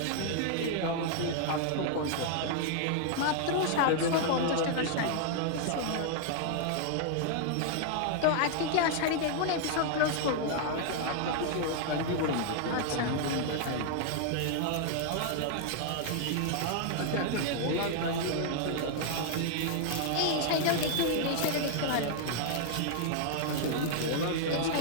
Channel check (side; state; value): both; different; correlation 0.00